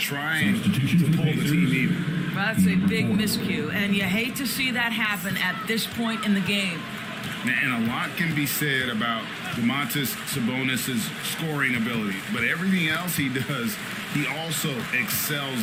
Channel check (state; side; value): identical; both; correlation 1.00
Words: to pull the team even. Well, that's a big miscue, and you hate to see that happen at this point in the game. And a lot can be said about Domantas Sabonis' scoring ability, but everything else he does, he also